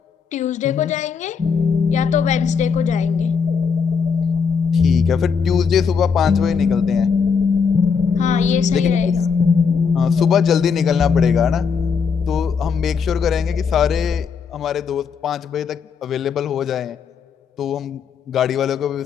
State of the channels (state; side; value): quieter; right; 6.0 dB